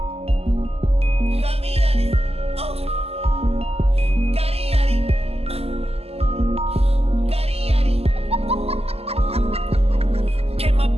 Got me on it. Oh. Got it, got it. Got it, got it. Came my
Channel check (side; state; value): left; late; 0.29 ms